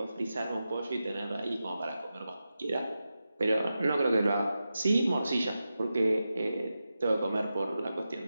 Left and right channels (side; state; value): both; inverted; correlation -0.91